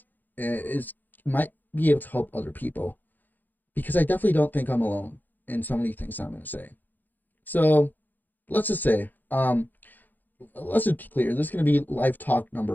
is might be able to help other people because I definitely don't think I'm alone in so many things I'm going to say. So let's just say, let's just be clear. This is going to be live talk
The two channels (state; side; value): late; right; 0.086 ms